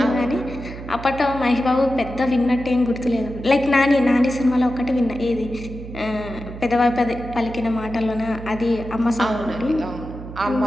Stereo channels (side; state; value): right; noise; hum, 12 dB below the sound